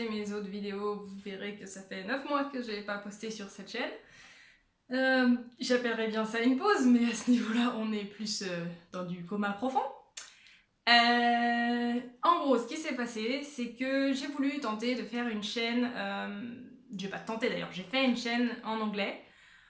mes autres vidéos, vous verrez que ça fait 9 mois que je n'ai pas posté sur cette chaîne. J'appellerais bien ça une pause, mais à ce niveau-là, on est plus dans du coma profond. En gros, ce qui s'est passé, c'est que j'ai voulu tenter de faire une chaîne... j'ai pas tenté d'ailleurs, j'ai fait une chaîne en anglais.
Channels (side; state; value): both; identical; correlation 1.00